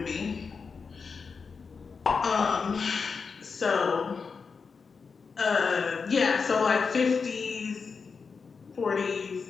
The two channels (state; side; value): quieter; right; 5.2 dB